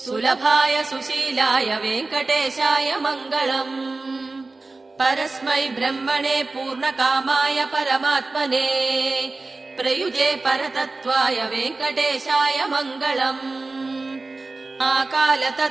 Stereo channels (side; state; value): left; quieter; 3.4 dB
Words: सुलभाय सुशीलाय वेङ्कटेशाय मङ्गलम् परस्मै ब्रह्मणे पूर्णकामाय परमात्मने प्रयुजे परतत्त्वाय वेङ्कटेशाय मङ्गलम्